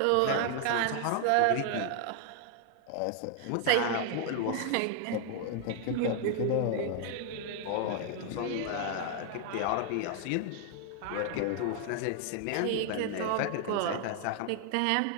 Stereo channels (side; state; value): both; different; correlation 0.00